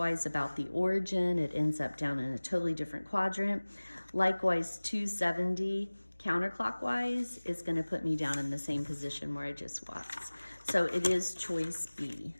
about the origin, it ends up down in a totally different quadrant. Likewise, 270 counterclockwise is gonna put me down in the same position where I just was. So it is choice B,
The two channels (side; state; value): both; inverted; correlation -1.00